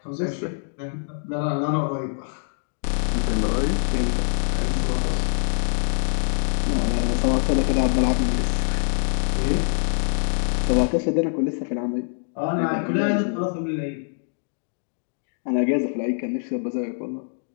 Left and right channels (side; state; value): right; silent; digital silence